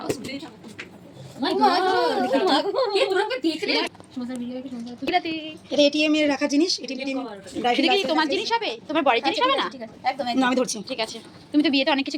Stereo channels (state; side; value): identical; both; correlation 1.00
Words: এটা ATM এর রাখা জিনিস। এটা কি তোমার জিনিস হবে? তোমার বড়ির জিনিস হবে না? না, আমি ধরছি। ঠিক আছে, তুমি তো বিয়েতে অনেক